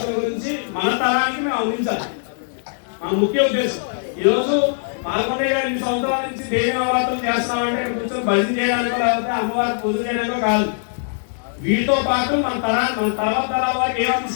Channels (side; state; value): right; silent; digital silence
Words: గురించి మన తరానికి మేము అందించాలి. మన ముఖ్య ఉద్దేశం ఈరోజు పాల్గొనే 2 సంవత్సరాల నుంచి దేవి నవరాత్రులు చేస్తామంటే ఇక్కడ కూర్చొని భజన చేయడానికో లేకపోతే అమ్మవారి పూజ చేయడానికో కాదు. వీటితో పాటు మన తర్వాత తరాల వారికి ఏం